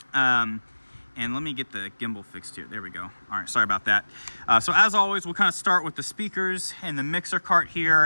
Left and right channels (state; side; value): inverted; both; correlation -1.00